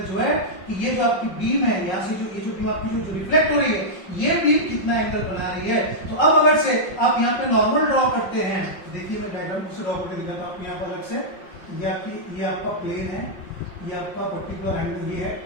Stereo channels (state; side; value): late; right; 5.5 ms